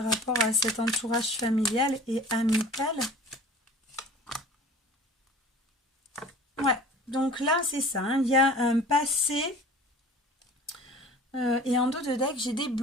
rapport à cet entourage familial et amical? Ouais, donc là c'est ça. Hein, il y a un passé et en dos de deck j'ai des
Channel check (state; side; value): normal; both; correlation 0.44